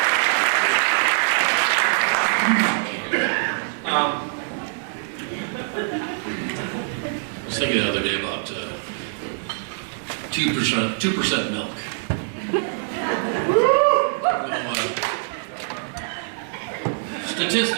I was thinking the other day about 2% milk.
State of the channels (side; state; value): left; silent; 63 dB below the other